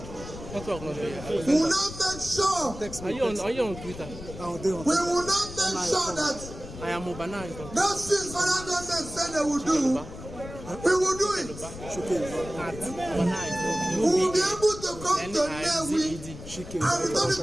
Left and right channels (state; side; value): noise; left; rumble, 12 dB below the sound